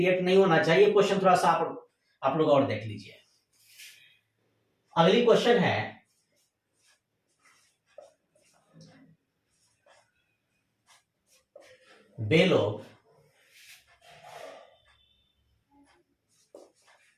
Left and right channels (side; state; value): both; identical; correlation 1.00